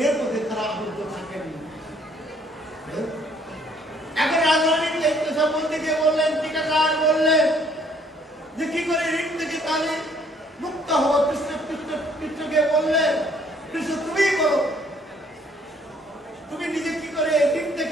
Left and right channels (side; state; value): both; normal; correlation 0.63